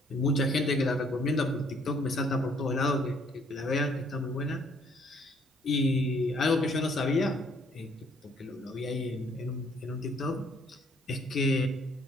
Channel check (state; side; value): normal; both; correlation 0.64